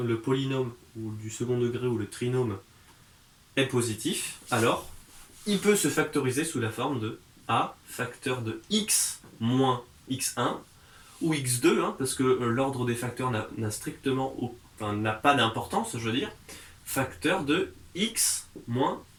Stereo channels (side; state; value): both; identical; correlation 1.00